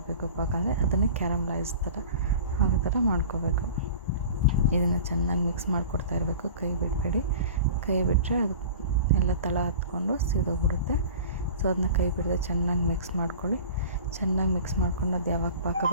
ಪಾಕ ಅಂದರೆ ಅದನ್ನೇ ಕ್ಯಾರಮಲೈಸ್ ಥರ ಆಗೋ ಥರ ಮಾಡ್ಕೋಬೇಕು. ಇದನ್ನು ಚೆನ್ನಾಗಿ ಮಿಕ್ಸ್ ಮಾಡಿಕೊಡ್ತಾ ಇರಬೇಕು. ಕೈ ಬಿಡಬೇಡಿ. ಕೈ ಬಿಟ್ಟರೆ ಅದು ಎಲ್ಲ ತಳ ಹತ್ಕೊಂಡು ಸೀದೋಗ್ಬಿಡುತ್ತೆ. ಸೊ ಅದನ್ನ ಕೈ ಬಿಡದೆ ಚೆನ್ನಾಗಿ ಮಿಕ್ಸ್ ಮಾಡ್ಕೊಳ್ಳಿ. ಚೆನ್ನಾಗಿ ಮಿಕ್ಸ್ ಮಾಡ್ಕೊಂಡು ಅದು ಯಾವಾಗ ಪಾಕ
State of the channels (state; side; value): inverted; both; correlation -0.40